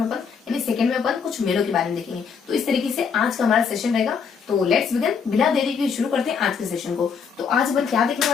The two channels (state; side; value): quieter; right; 6.2 dB